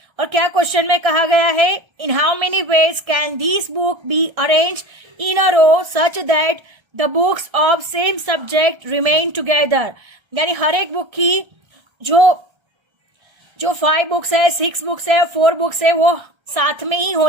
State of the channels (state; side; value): late; left; 1.3 ms